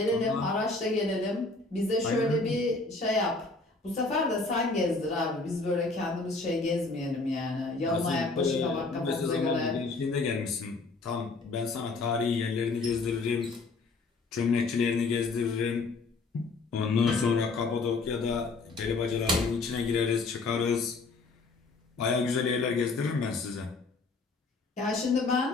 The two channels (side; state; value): right; quieter; 3.8 dB